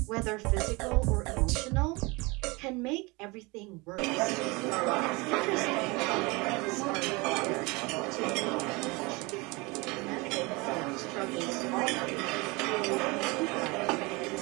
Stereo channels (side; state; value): left; quieter; 25.7 dB